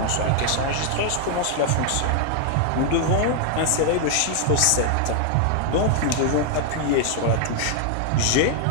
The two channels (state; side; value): different; both; correlation 0.00